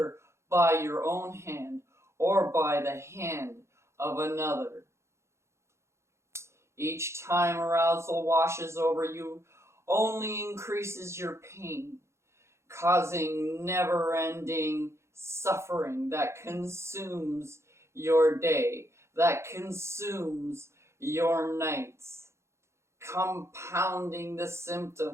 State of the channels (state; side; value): late; left; 0.13 ms